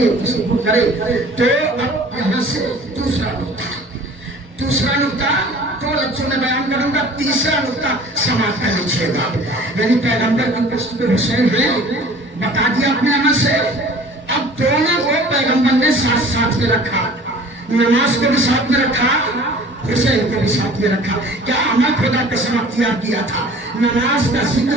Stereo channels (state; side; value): normal; both; correlation 0.47